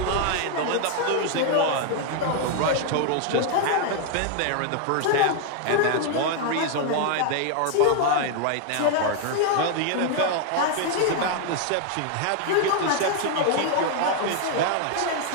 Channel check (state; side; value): different; both; correlation 0.00